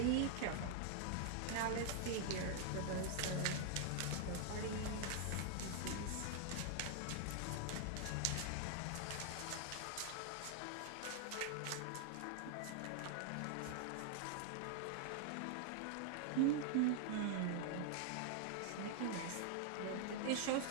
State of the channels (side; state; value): both; different; correlation 0.00